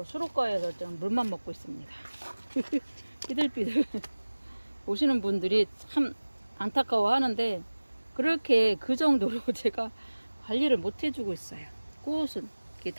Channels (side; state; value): both; inverted; correlation -1.00